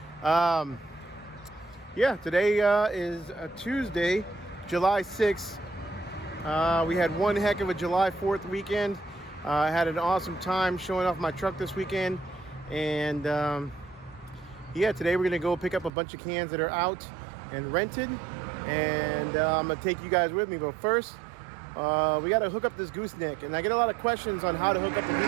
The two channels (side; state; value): left; drops out; at 15.9 s